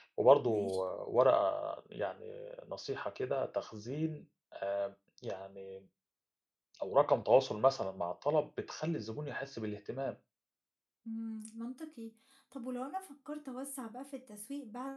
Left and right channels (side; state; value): both; identical; correlation 1.00